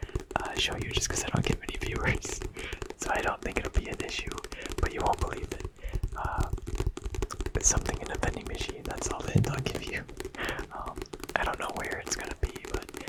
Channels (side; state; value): both; identical; correlation 1.00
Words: show you just because I don't get many viewers. So I don't think it'll be an issue, but you won't believe it. It's something in a vending machine, that's all the hint I'll give you. I don't know where it's gonna be, but